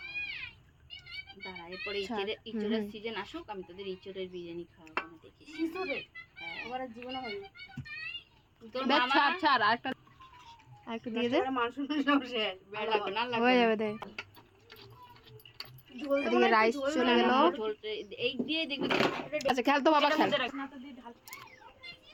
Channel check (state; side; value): identical; both; correlation 1.00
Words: দাঁড়া, এরপরে ইঁচড়ের সিজন আসুক, আমি তোদের ইঁচড়ের বিরিয়ানি খাওয়াবো না, দেখিস। ইঁচড়ের আমার জীবনে হয়নি। তোর মামা ছাড় আরেকটা দিয়ে দে, মাংস শেষ, আর লাগবে না, হয়ে যাবে দে। এদিকে রাইস চলে গেল, এই দিয়ে দেখবি। আচ্ছা খেল তো বাবা, খেল।